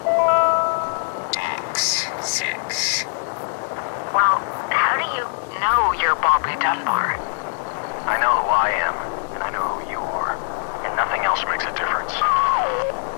X6. Well, how do you know you're Bobby Dunbar? I know who I am, and I know who you are, and nothing else makes a difference.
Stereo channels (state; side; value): silent; right; 64 dB below the other